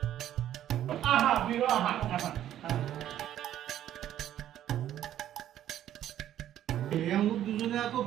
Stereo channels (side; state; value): left; quieter; 11.6 dB